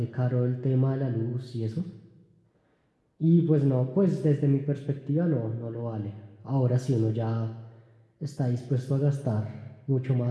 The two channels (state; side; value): identical; both; correlation 1.00